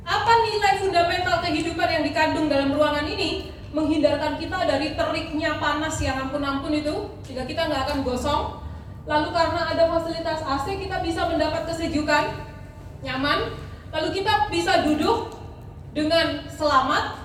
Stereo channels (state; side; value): identical; both; correlation 1.00